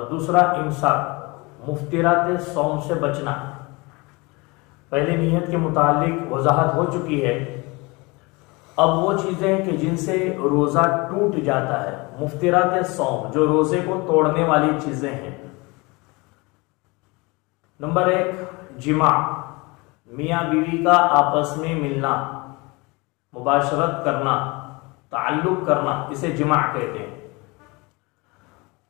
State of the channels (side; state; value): right; quieter; 25.8 dB